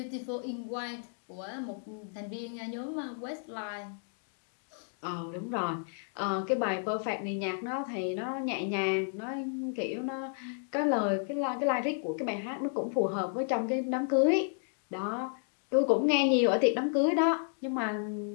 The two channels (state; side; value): silent; right; 56 dB below the other